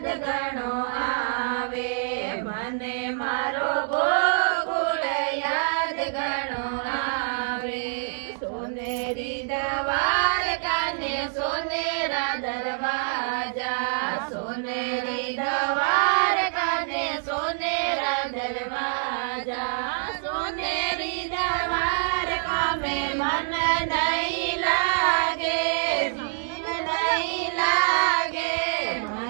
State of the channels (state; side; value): silent; left; digital silence